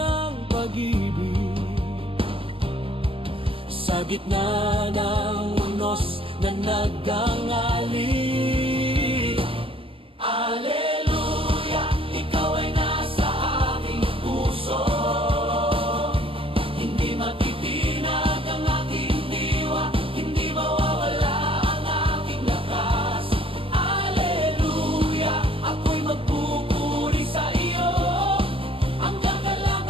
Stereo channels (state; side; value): late; left; 0.26 ms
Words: pag-ibig sa gitna ng unos na nagangali. Aleluya, ikaw ay nasa aking puso. Hindi matitinag ang aking diwa, hindi mawawala ang aking lakas. Aleluya, ako'y magpupuri sa iyo. Ang